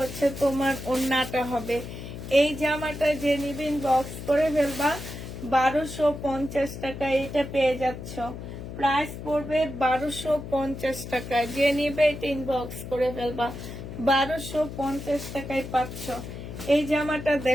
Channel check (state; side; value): noise; left; hum, 10 dB below the sound